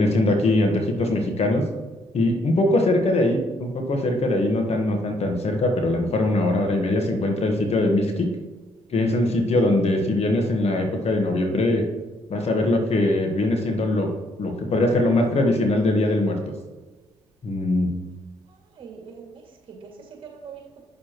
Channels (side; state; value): both; normal; correlation 0.70